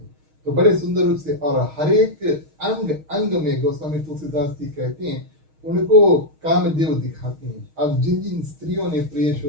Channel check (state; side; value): late; left; 6.4 ms